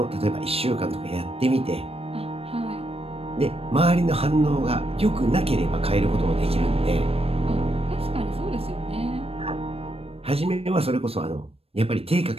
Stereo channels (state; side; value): late; left; 0.28 ms